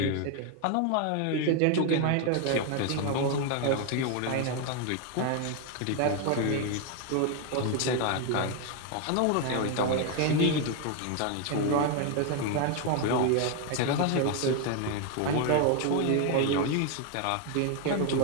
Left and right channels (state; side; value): different; both; correlation 0.01